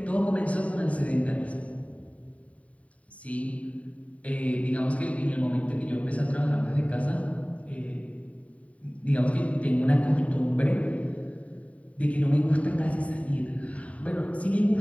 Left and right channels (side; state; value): right; late; 0.067 ms